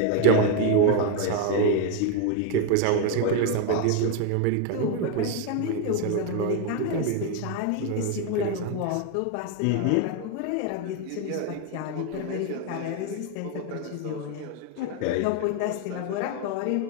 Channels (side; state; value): both; different; correlation 0.01